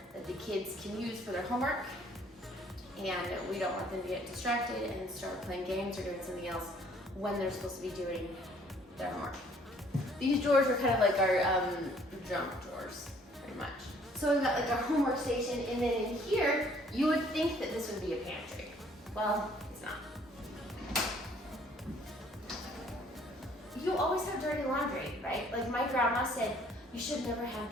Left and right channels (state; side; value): normal; both; correlation 0.60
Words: that the kids can use for their homework, and we don't want them to get distracted and start playing games or doing something else when they're supposed to be doing their homework. These drawers are kind of like our junk drawers, pretty much. So we've got like our homework station, and then in here, you would think that this would be a pantry. Well, it's not. You always have dirty laundry, right? Like my grandma said, you should never have